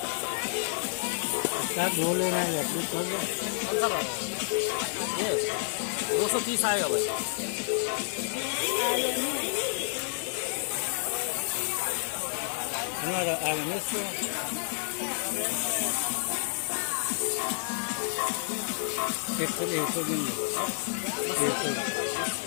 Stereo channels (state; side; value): silent; right; 58 dB below the other